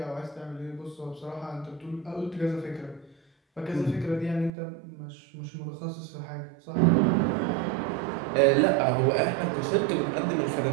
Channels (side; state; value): left; drops out; at 4.5 s